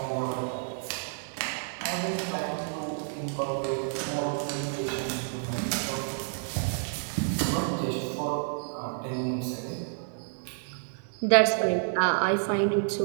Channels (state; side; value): silent; left; digital silence